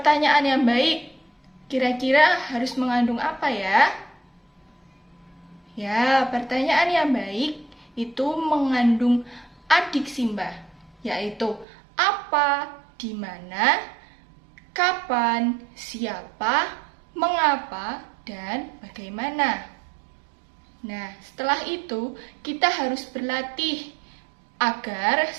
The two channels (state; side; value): drops out; left; at 11.7 s